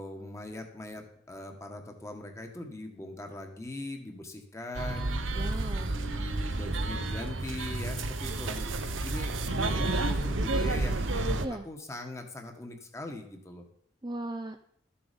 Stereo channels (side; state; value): both; normal; correlation 0.65